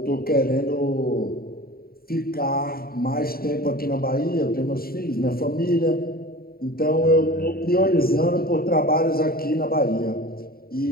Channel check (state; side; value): late; right; 0.43 ms